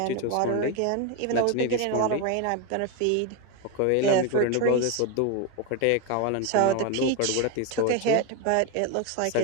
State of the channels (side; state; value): both; different; correlation 0.02